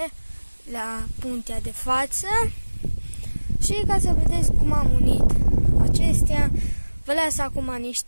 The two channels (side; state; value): both; inverted; correlation -1.00